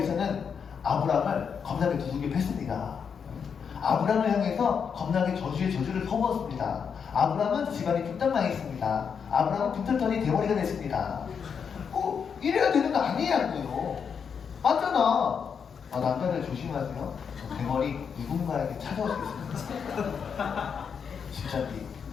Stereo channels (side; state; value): right; quieter; 6.7 dB